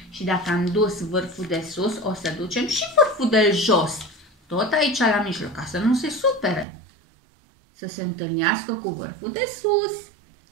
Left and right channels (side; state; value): left; drops out; at 6.7 s